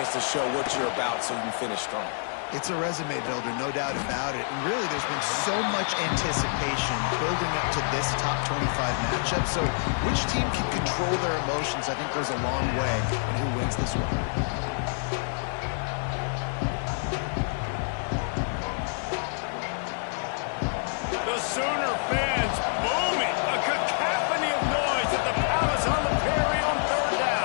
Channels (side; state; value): right; silent; digital silence